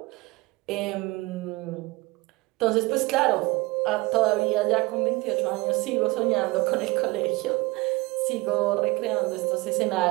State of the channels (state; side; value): quieter; left; 23.0 dB